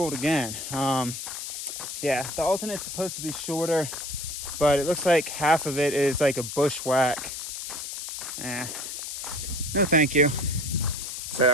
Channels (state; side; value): noise; left; hiss, 6 dB below the sound